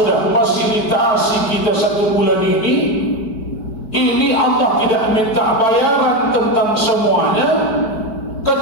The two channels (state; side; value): late; right; 4.5 ms